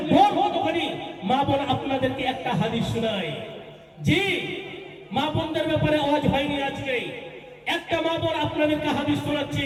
ডর কতখানি মা বোন আপনাদেরকে একটা হাদিস শোনায় জি মা বোনদের ব্যাপারে আওয়াজ হয়নি আজকে একটা মা বোন আপনাদেরকে হাদিস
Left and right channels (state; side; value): identical; both; correlation 1.00